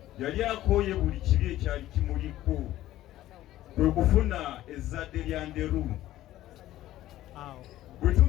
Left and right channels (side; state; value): right; quieter; 14.4 dB